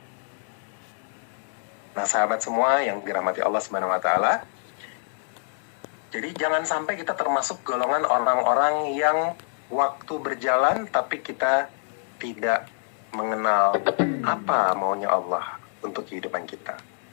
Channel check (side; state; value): right; silent; digital silence